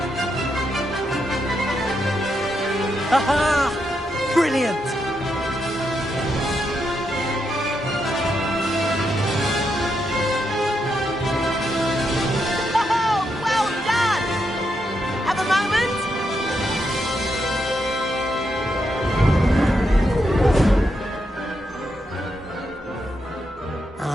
Aha! Brilliant! Oh, well done! Have a moment?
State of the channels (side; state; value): both; normal; correlation 0.82